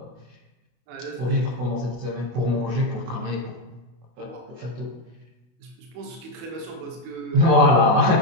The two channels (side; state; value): left; late; 24 ms